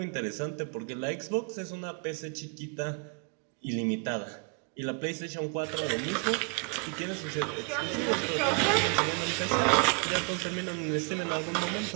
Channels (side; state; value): left; quieter; 34.9 dB